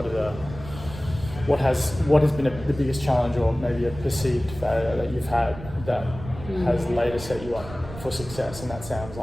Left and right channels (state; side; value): noise; right; rumble, 13 dB below the sound